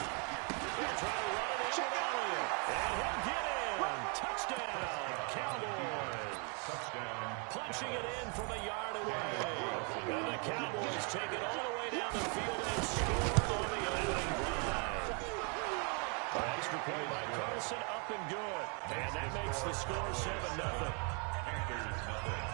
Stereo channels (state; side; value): quieter; left; 36.4 dB